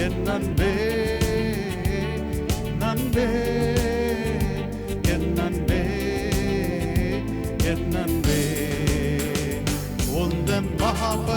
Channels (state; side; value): identical; both; correlation 1.00